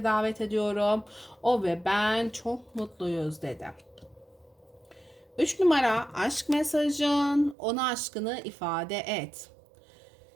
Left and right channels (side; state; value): left; drops out; at 7.6 s